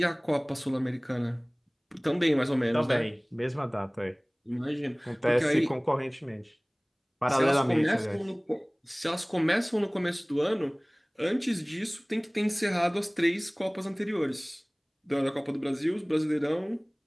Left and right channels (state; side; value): identical; both; correlation 1.00